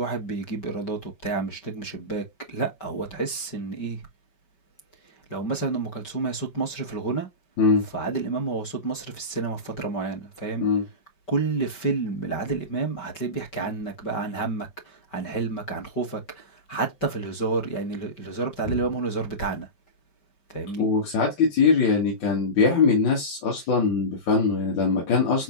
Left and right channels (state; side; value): late; right; 5.2 ms